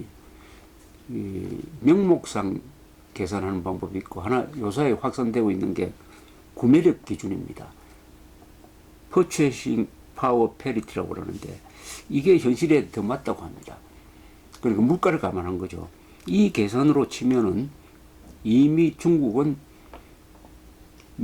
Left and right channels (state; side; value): identical; both; correlation 1.00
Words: 명목상 계산하는 방법이 있고 하나 요사에 확산되고 있는 게 구매력 기준입니다. Purchasing Power Parity라고 그러는데 이게 현실에 더 맞다고 합니다. 그러니까 물가를 감안한 거죠. 이 계산으로 치면은 이미 중국은